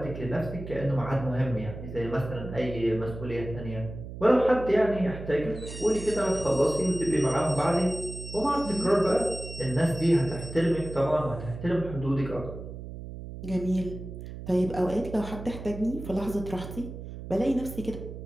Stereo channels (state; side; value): noise; right; hum, 10 dB below the sound